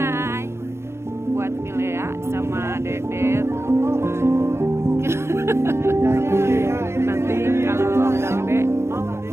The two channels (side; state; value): left; late; 0.13 ms